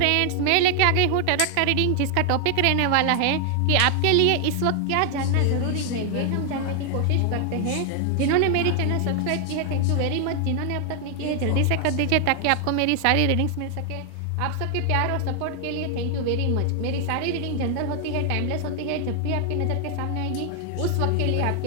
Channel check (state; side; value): different; both; correlation 0.00